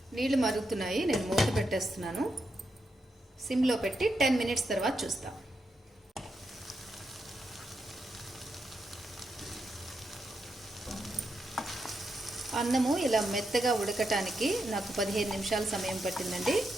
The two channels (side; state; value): both; normal; correlation 0.84